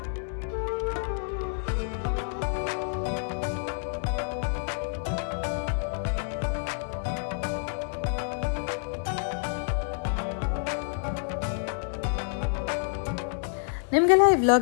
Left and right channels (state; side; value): silent; right; digital silence